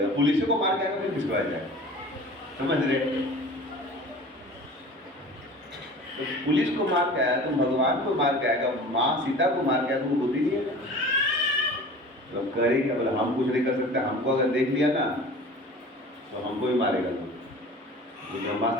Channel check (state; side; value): normal; both; correlation 0.41